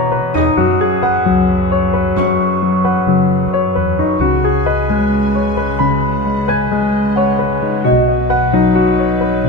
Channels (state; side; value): late; right; 2.0 ms